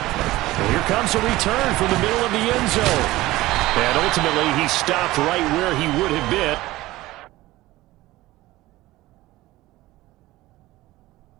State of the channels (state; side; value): quieter; left; 17.8 dB